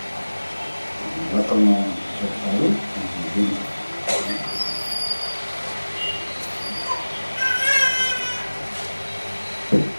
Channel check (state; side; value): inverted; both; correlation -1.00